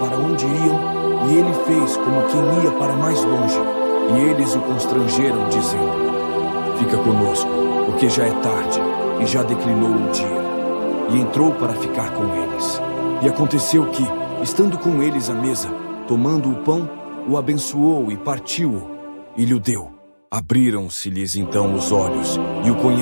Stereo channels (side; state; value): both; inverted; correlation -1.00